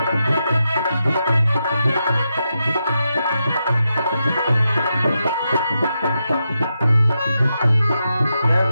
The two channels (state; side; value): inverted; both; correlation -0.86